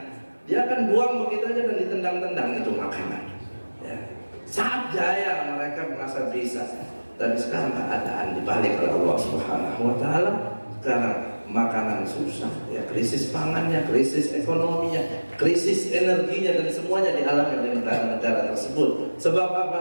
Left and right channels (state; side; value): inverted; both; correlation -1.00